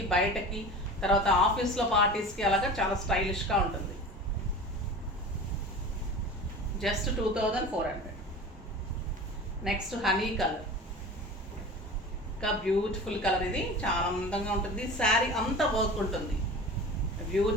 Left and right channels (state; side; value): normal; both; correlation 0.35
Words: బయటకి, తర్వాత ఆఫీస్లో పార్టీస్కి అలాగా చాలా స్టైలిష్గా ఉంటుంది. జస్ట్ 2400. నెక్స్ట్ హనీ కలర్, ఇంకా బ్యూటిఫుల్ కలర్, ఇది చాలా అందంగా ఉంటుంది. శారీ అంతా వర్క్ ఉంటుంది,